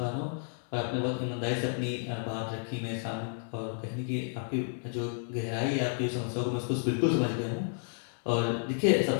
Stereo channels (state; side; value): silent; right; 57 dB below the other